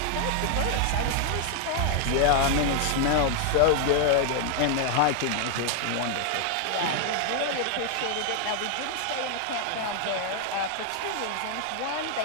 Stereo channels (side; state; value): both; different; correlation 0.00